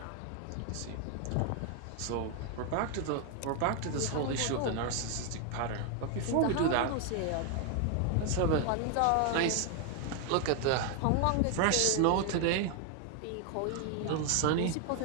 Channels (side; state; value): both; different; correlation 0.01